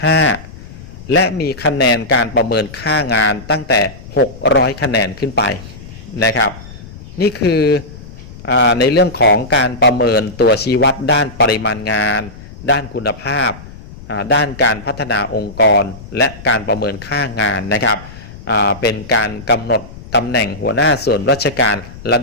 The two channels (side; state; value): left; noise; rumble, 16 dB below the sound